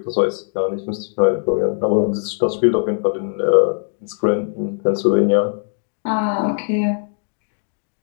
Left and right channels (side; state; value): right; silent; 66 dB below the other